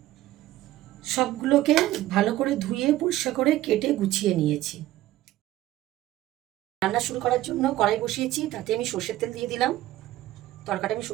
সবগুলোকে ভালো করে ধুয়ে পরিষ্কার করে কেটে গুছিয়ে নিয়েছি। রান্না শুরু করার জন্য কড়াই বসিয়েছি, তাতে আমি সর্ষের তেল দিয়ে দিলাম। তরকাটা আমি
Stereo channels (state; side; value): quieter; left; 15.3 dB